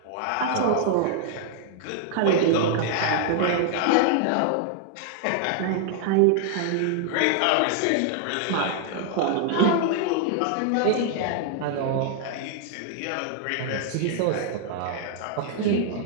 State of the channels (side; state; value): both; different; correlation 0.00